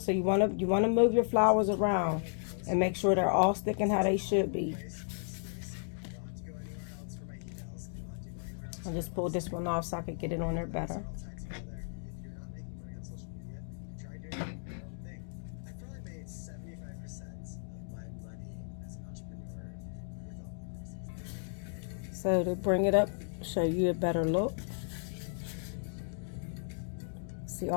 you want to move your flowers around and make sure they're all sticking how they should be. I just pulled this one off so I could get it on there better. So to bring it up, show you a better look. See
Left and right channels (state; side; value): silent; right; digital silence